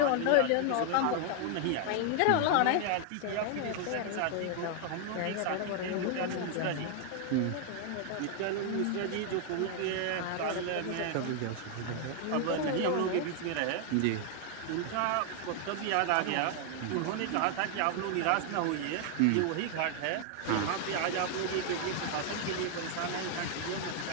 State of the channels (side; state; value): both; different; correlation 0.00